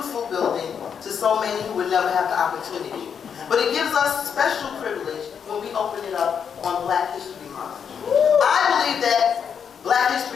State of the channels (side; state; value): right; quieter; 7.3 dB